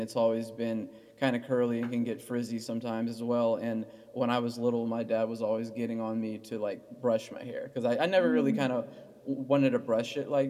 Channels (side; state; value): both; identical; correlation 1.00